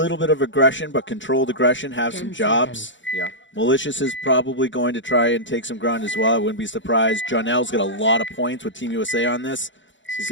bit of aggression, but controlled aggression, have 10 some jobs. seconds. Yeah. Malicious is probably going to try and take some ground as well. I wouldn't be surprised. Jonell's got a lot of points with Team USA on this.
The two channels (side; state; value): right; late; 0.55 ms